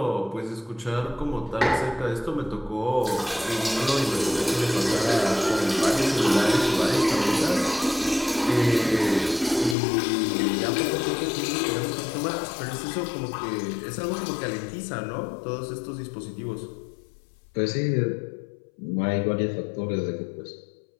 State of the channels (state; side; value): drops out; right; at 9.8 s